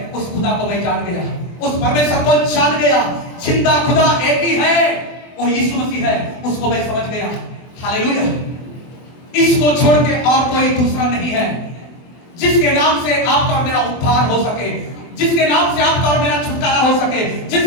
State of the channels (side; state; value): right; late; 24 ms